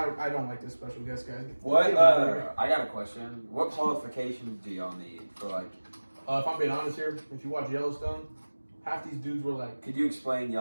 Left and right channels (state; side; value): inverted; both; correlation -1.00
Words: don't like this special guest, guys. What? I got a question. What qualifications do y'all need for like? If I'm being honest here, if you watch Yellowstone, half these dudes were like, Could you explain